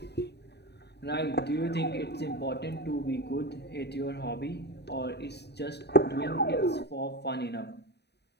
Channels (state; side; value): late; right; 0.49 ms